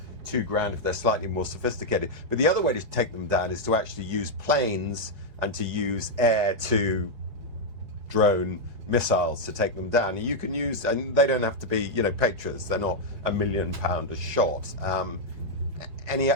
$2,000 if they're slightly more sophisticated. But the other way to take them down is to actually use planes and to use air-to drone missiles to take them down. And you can use, and they don't have to be, Patriots. They're not £1 million a shot.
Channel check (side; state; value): left; late; 4.7 ms